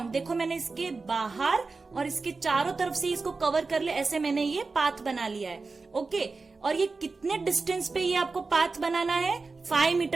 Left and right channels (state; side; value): quieter; left; 4.1 dB